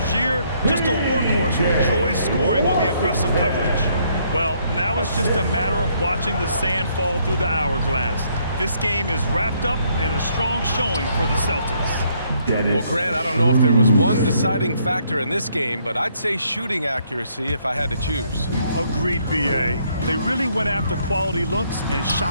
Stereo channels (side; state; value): both; inverted; correlation -0.69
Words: just a workhorse who enjoys scoring on the aggressive coverage. Well, now it's just a matter of watching the sand fall through the hourglass. This game is wrapped up and a strong showing for the Celtics. Well, Grant, I don't know if there was one deciding factor in this game, but I'd say shooting accuracy if I had to choose. Agreed, B.A. They really went after quality looks and